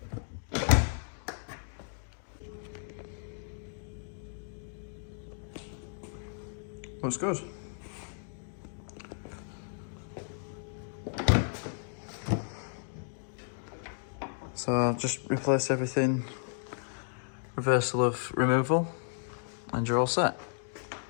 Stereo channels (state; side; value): silent; right; digital silence